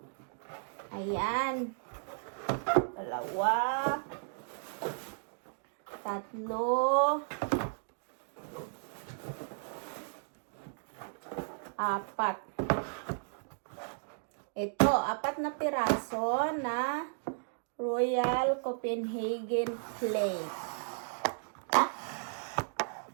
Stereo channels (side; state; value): left; silent; digital silence